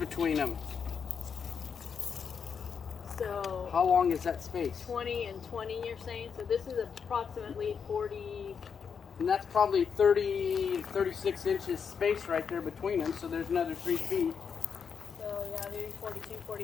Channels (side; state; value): right; quieter; 6.6 dB